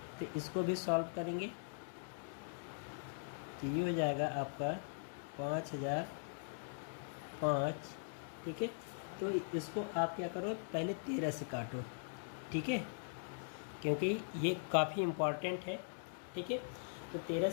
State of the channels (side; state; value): right; silent; digital silence